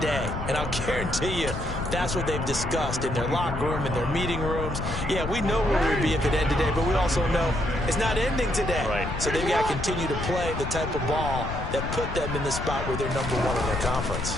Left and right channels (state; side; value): noise; left; rumble, 6 dB below the sound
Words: And I'll guarantee you, that's what they've discussed in their locker room, in their meeting rooms. Yeah, we know where we'd be if it ended today, but we also know it's not ending today. Right. So they've got to continue to play the type of ball that put them in the spot where they're #1 in their